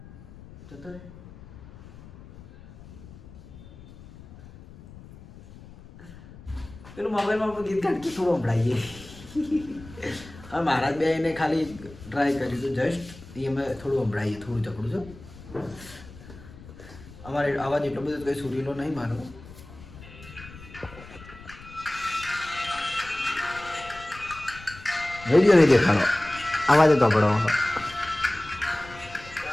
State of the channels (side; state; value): left; noise; rumble, 18 dB below the sound